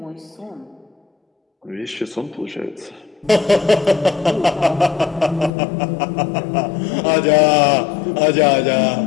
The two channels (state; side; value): drops out; right; at 5.5 s